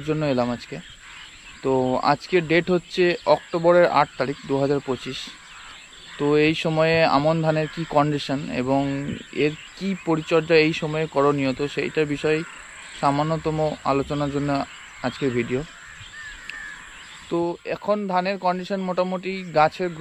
জন্য এলাম আজকে। তো আজকের ডেট হচ্ছে অক্টোবরের 8 তারিখ 2025। তো এই সময়ে আমন ধানের কি কন্ডিশন এবং এর কি পরিচর্যা এই সময়ে করণীয়, তো সেইটার বিষয়ে সামান্যতম আলোচনার জন্য আজকের ভিডিও। তো এখন ধানের কন্ডিশন মোটামুটি গাছের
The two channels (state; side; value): identical; both; correlation 1.00